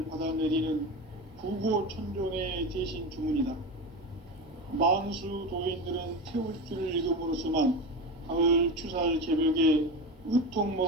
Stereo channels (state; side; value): normal; both; correlation 0.23